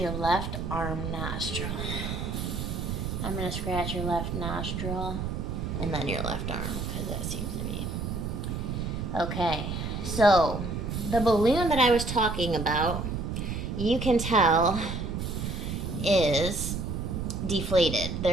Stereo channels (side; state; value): right; noise; rumble, 3 dB below the sound